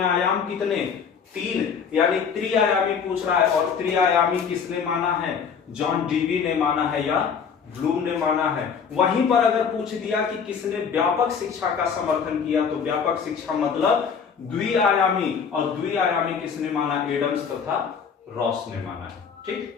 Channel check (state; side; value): quieter; right; 6.5 dB